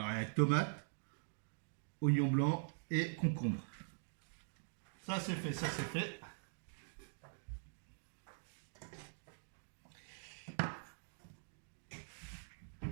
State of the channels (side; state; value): left; silent; digital silence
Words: tomate, oignon blanc et concombre. Ça c'est fait, ça c'est fait.